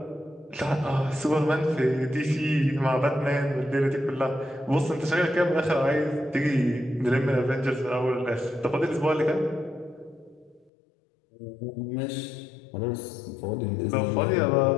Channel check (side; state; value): right; drops out; at 10.7 s